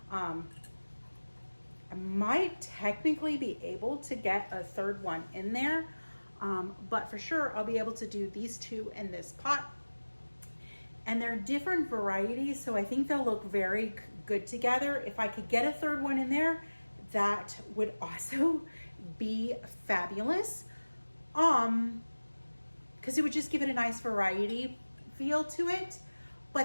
I might technically be able to get a 3rd one in there, but for sure I'll be able to do these 2 in this pot. And they're different varieties, so I think they'll look very good together. If I could get a 3rd one in there, that would also be fabulous. Because it would just give it a nice variety feel to it.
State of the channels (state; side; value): inverted; both; correlation -1.00